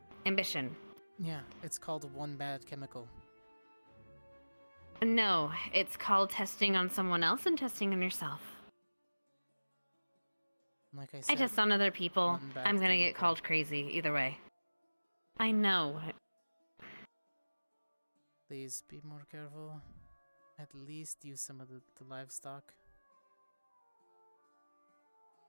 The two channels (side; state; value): both; inverted; correlation -1.00